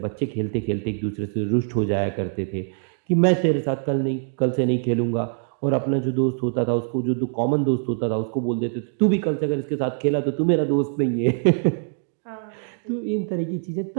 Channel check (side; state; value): left; silent; digital silence